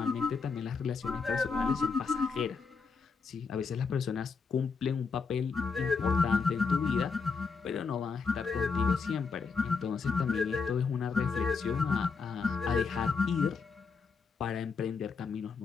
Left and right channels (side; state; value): right; quieter; 5.1 dB